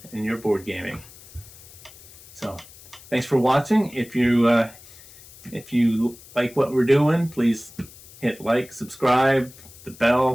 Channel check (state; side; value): noise; left; hiss, 21 dB below the sound